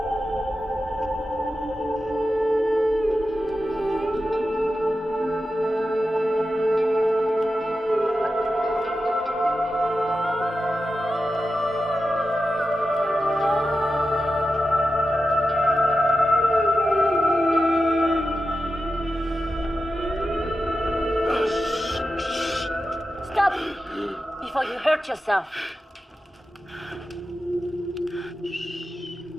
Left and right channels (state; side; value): normal; both; correlation 0.91